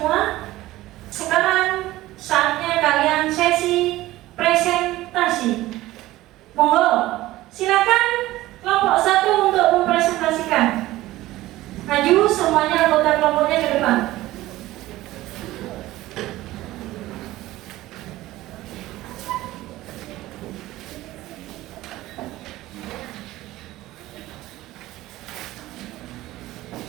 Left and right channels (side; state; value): left; quieter; 16.8 dB